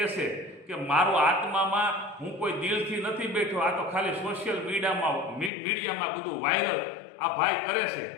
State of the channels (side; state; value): right; drops out; at 5.5 s